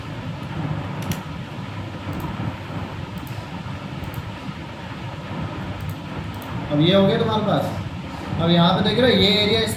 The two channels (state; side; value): identical; both; correlation 1.00